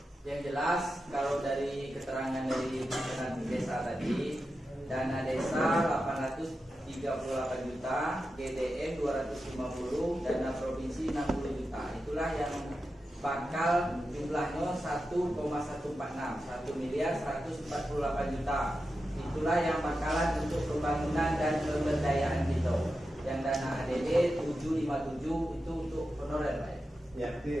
Yang jelas kalau dari keterangan dari Penanti Desa tadi, dana desa 838 juta, GDM 250, dana provinsi 60 juta. Itulah yang bakal jumlahnya 1,146, 1 miliar 148 juta. Itulah yang bakalan untuk pembangunan dan pemberdayaan kita. Yang dana ADD 757 itu untuk honorer, Pak. Ya,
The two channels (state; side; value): normal; both; correlation 0.90